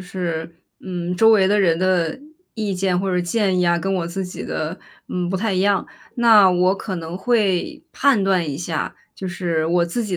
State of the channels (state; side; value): identical; both; correlation 1.00